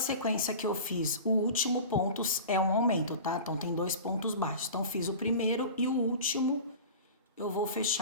que eu fiz, o último ponto é um aumento, tá? Então, tem 2 pontos baixos. Então, fiz o primeiro e o último eu vou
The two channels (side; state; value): both; inverted; correlation -0.35